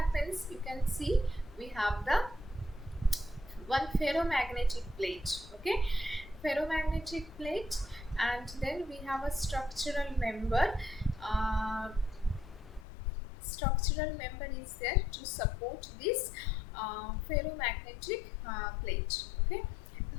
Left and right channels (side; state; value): right; drops out; at 12.9 s